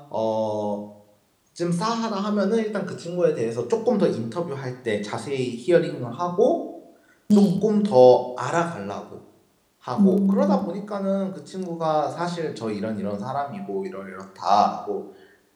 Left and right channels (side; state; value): both; identical; correlation 1.00